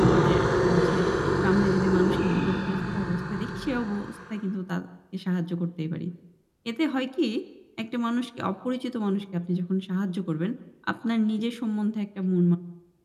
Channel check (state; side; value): identical; both; correlation 1.00